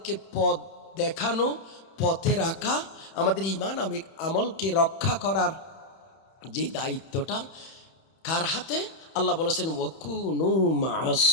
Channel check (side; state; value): right; late; 31 ms